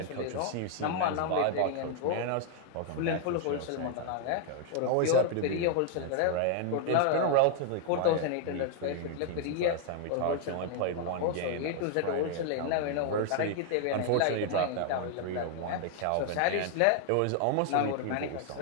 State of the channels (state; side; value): different; both; correlation 0.00